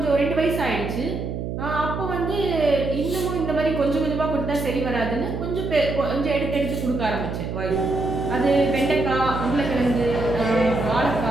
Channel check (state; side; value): noise; right; hum, 5 dB below the sound